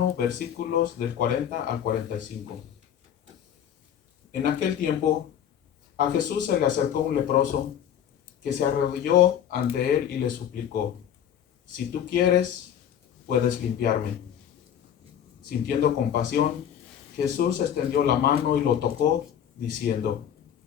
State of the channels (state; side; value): quieter; right; 9.5 dB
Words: versículos del 40 al 45. En aquel tiempo, a Jesús se le acercó un leproso que se arrodilló ante él y le suplicó: si tú quieres, puedes limpiarme. Sintiendo compasión, Jesús extendió la mano y lo tocó, diciendo: